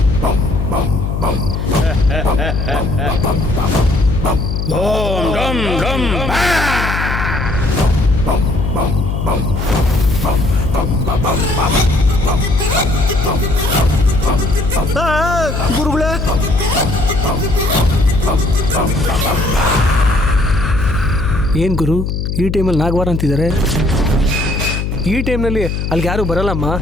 ಓಂ ಡಂ ಡಂ ಗುರುಗಳೇ, ಏನು ಗುರು, ಈ ಟೈಮಲ್ಲಿ ನಾಗವಾರ ಅಂತಿದ್ದಾರೆ? ಈ ಟೈಮ್ನಲ್ಲಿ ಅಲ್ಲಿಗೆ ಯಾರು ಬರಲ್ಲಮ್ಮ.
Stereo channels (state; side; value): noise; left; hum, 2 dB below the sound